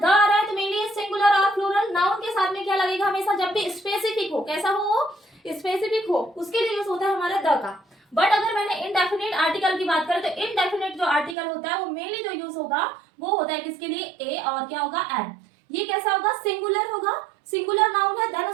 आ रहा है तो मेनली सिंगुलर और प्लूरल नाउन के साथ में क्या लगेगा, हमेशा जब भी स्पेसिफिक हो, कैसा हो, स्पेसिफिक हो, उसके लिए यूज होता है हमारा द का। बट अगर मैंने इनडेफिनेट आर्टिकल की बात करें तो इनडेफिनेट जो आर्टिकल होता है वो मेनली जो यूज होगा वो होता है किसके लिए, ए और क्या होगा, एन। ये कैसा होगा, सिंगुलर होगा, सिंगुलर नाउन है, देन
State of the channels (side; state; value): left; drops out; at 11.4 s